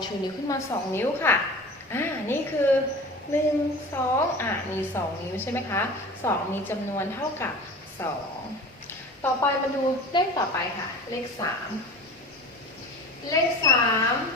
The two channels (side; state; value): both; normal; correlation 0.36